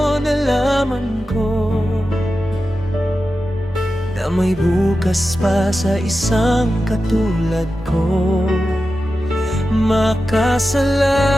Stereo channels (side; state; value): both; normal; correlation 0.92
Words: nalaman ko na may bukas pa sa isang katulad ko.